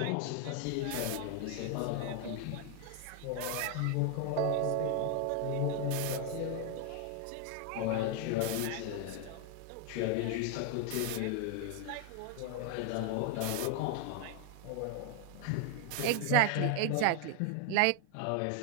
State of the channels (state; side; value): different; both; correlation 0.01